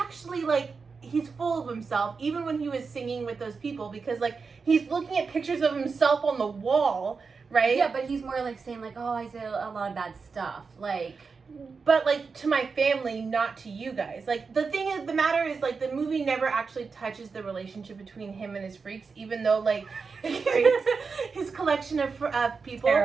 like he's full of himself, even when he was singing with those people, because like he's looking at pictures of himself on the wall, right? Yeah, but he's more like saying like, oh, I say a lot of bad stuff, like. But like, to my family, not to you guys. Like, the thing is, the matter is, like, the movie never actually touches the relationship between him and his freaks, even though like his collection of people.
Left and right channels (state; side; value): quieter; left; 4.9 dB